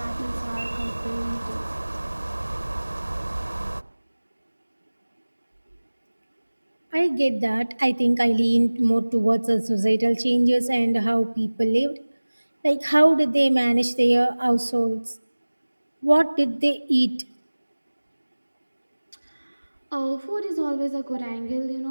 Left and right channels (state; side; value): inverted; both; correlation -1.00